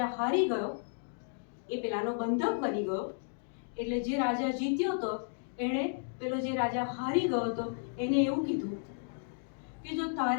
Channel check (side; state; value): right; silent; digital silence